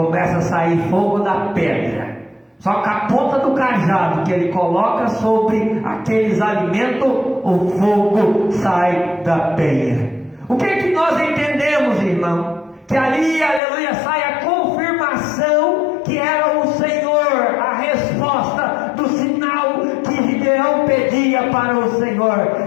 a sair fogo da pedra. Só que a ponta do cajado que ele coloca sobre aqueles alimentos, o fogo sai da penha. O que é que nós entendemos, irmão? Que ali, aleluia, sai a confirmação que era o Senhor, a resposta do sinal que Gideão pedia para o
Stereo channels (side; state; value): right; drops out; at 13.6 s